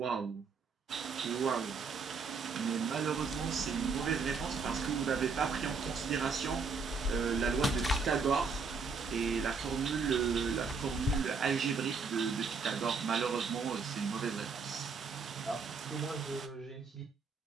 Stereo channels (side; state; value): left; quieter; 4.8 dB